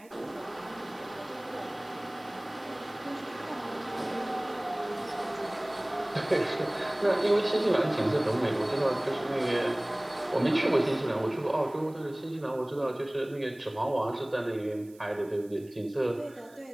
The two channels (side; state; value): right; noise; hiss, 27 dB below the sound